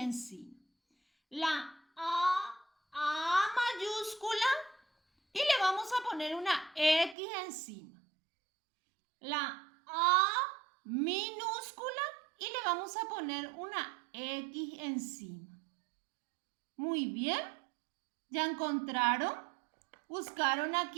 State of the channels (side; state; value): left; drops out; at 7.2 s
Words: La A mayúscula y le vamos a poner una X encima. La A minúscula y le vamos a poner una X encima. Muy bien. ¿Ya encontraron? ¿Buscaron